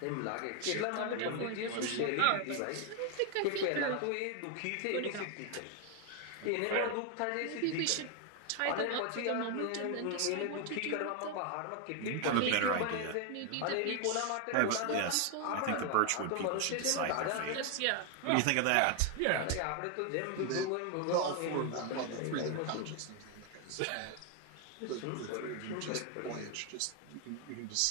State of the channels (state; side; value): different; both; correlation 0.01